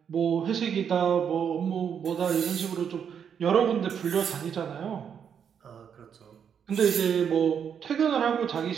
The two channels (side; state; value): left; quieter; 7.8 dB